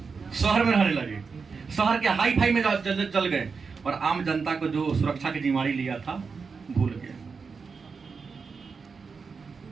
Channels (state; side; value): quieter; left; 5.2 dB